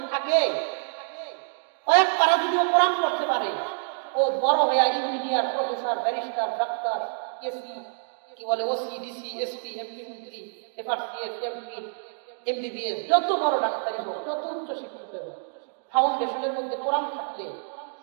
থাকে, কয়েক পারা যদি ও কোরআন পড়তে পারে, ও বড় হয়ে engineer, professor, barrister, doctor, AC, কি বলে ওসি, ডিসি, এসপি, এমপি, মন্ত্রী, এফআরসিএস, এমপি, এমবিবিএস, যত বড় ডাক্তারই হোক, যত উচ্চ শিক্ষিত হোক, ফাউন্ডেশনের মধ্যে কোরআন থাকলে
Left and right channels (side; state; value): left; silent; digital silence